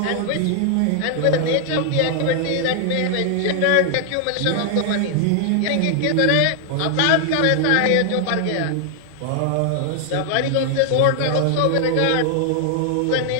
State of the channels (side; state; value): both; different; correlation 0.00